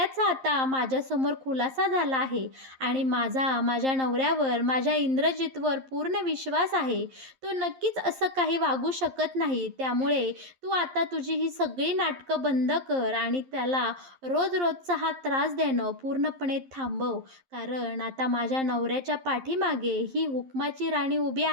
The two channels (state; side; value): late; left; 11 ms